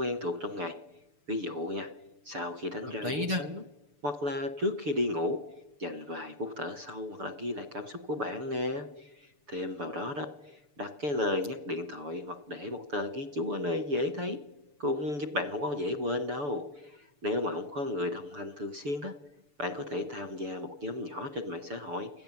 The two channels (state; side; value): late; left; 6.9 ms